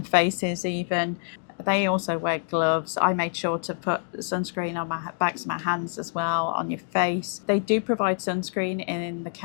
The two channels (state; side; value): silent; right; digital silence